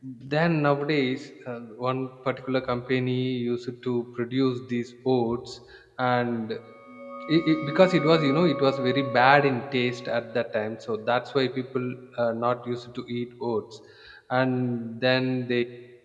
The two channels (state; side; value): identical; both; correlation 1.00